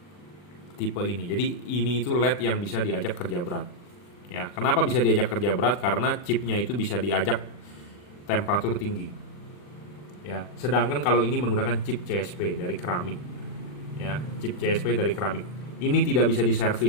tipe ini. Jadi ini itu LED yang bisa diajak kerja berat. Ya, kenapa bisa diajak kerja berat? Karena chipnya itu bisa diajak temperatur tinggi. Ya, sedangkan kalau ini menggunakan chip CSP dari keramik. Ya, chip CSP dari keramik. Ini tidak bisa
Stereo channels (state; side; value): late; right; 40 ms